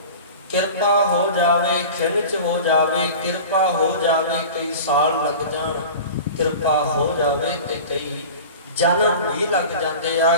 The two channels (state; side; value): inverted; both; correlation -0.36